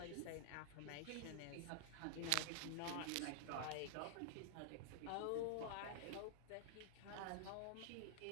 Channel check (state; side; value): different; both; correlation -0.01